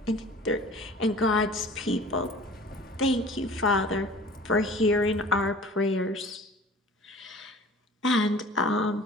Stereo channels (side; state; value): both; normal; correlation 0.45